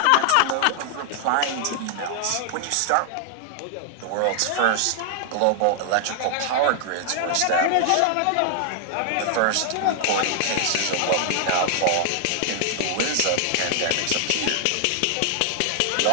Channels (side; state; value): both; different; correlation 0.00